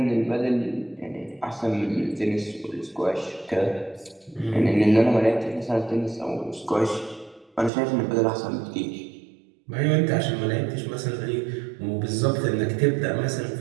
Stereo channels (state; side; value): drops out; left; at 7.7 s